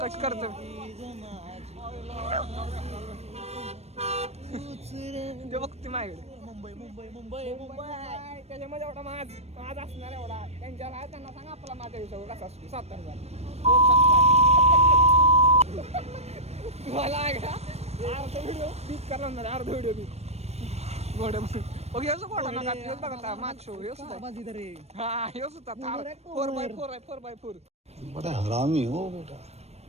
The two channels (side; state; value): left; late; 0.31 ms